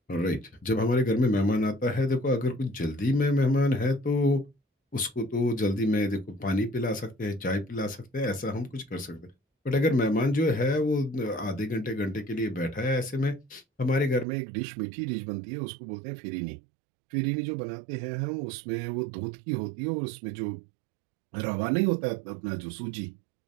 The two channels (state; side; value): drops out; left; at 14.2 s